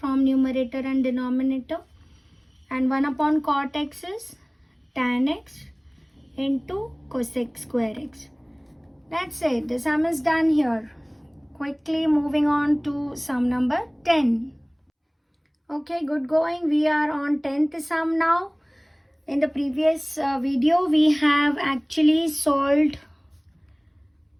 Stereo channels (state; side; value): identical; both; correlation 1.00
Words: numerator and denominator, and 1 upon cot x is tan x into cosec square x. That's it. The sum is done here. Quickly moving on to sum number 10. Okay, good going. We are on 10th sum now. In the previous video, we have actually solved